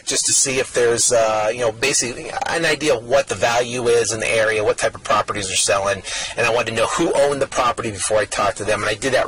just to see if there's, basically an idea of what the value is in the area, what type of properties are selling, and I wanted to know who owned the property before I talked to them. And I did that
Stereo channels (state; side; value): identical; both; correlation 1.00